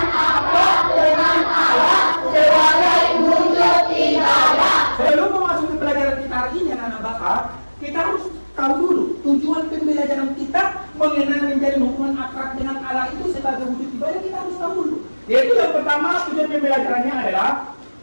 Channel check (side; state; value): both; inverted; correlation -1.00